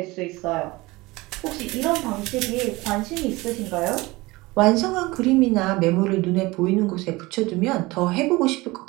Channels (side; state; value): left; quieter; 21.6 dB